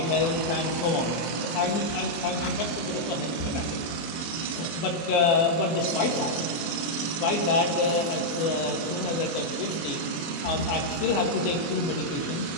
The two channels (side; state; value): right; late; 24 ms